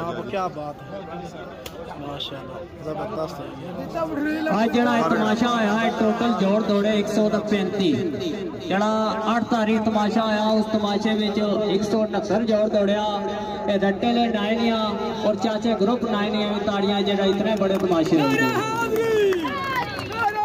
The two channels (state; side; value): identical; both; correlation 1.00